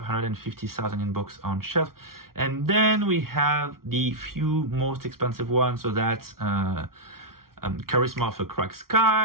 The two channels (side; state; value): left; late; 0.93 ms